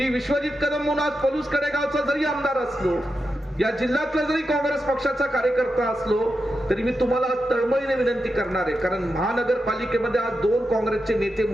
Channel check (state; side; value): normal; both; correlation 0.88